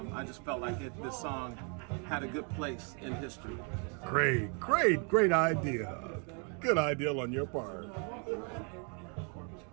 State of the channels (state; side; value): quieter; left; 37.8 dB